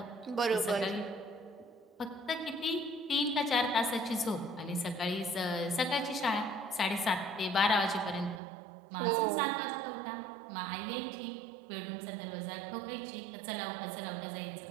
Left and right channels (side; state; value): left; drops out; at 8.4 s